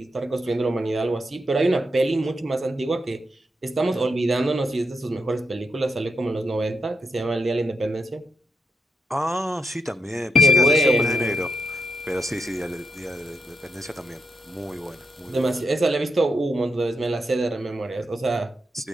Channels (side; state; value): both; normal; correlation 0.82